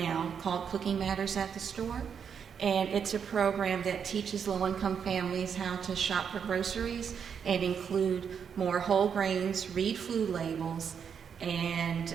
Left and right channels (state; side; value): quieter; left; 7.2 dB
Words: called Cooking Matters at the Store, and it's a program that teaches low-income families how to shop for groceries and include more whole grains, read food labels, and